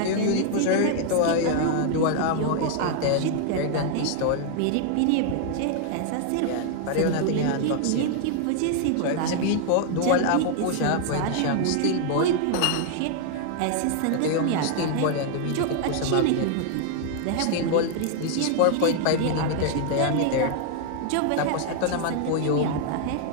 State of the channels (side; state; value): both; different; correlation 0.00